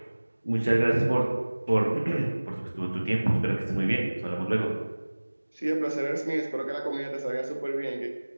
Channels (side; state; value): both; inverted; correlation -1.00